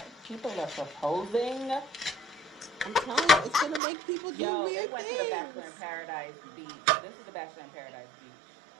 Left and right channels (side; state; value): left; drops out; at 3.8 s